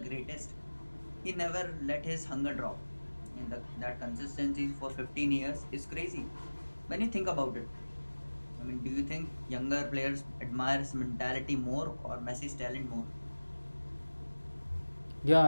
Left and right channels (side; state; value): both; inverted; correlation -1.00